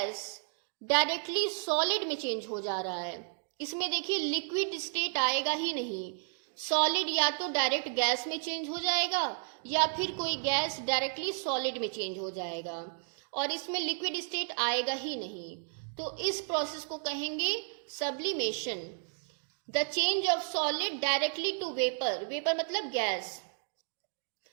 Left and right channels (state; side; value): silent; left; 56 dB below the other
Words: डायरेक्टली सॉलिड में चेंज हो जा रहा है, इसमें देखिए लिक्विड स्टेट आएगा ही नहीं। सॉलिड या तो डायरेक्ट गैस में चेंज हो जाएगा या फिर कोई गैस डायरेक्टली सॉलिड में चेंज हो जाएगा और इसमें लिक्विड स्टेट आएगा ही नहीं। तो इस प्रोसेस को कहेंगे sublimation. The change of solid directly to vapour, vapour मतलब gas.